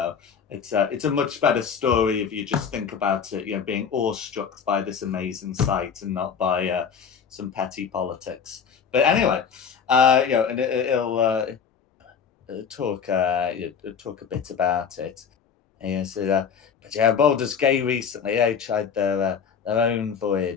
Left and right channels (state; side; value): quieter; right; 6.8 dB